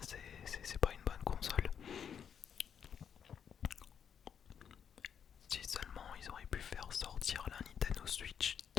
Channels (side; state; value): right; quieter; 7.8 dB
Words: c'est pas une bonne console. Si seulement ils auraient pu faire sortir la Nintendo Switch